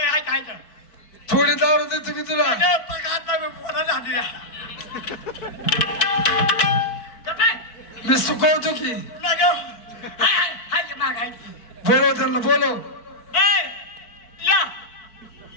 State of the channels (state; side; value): late; right; 4.5 ms